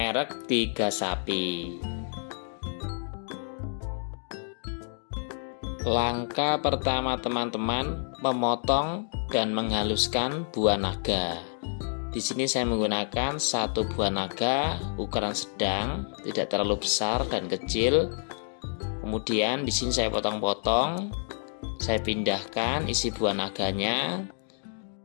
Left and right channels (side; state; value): right; silent; digital silence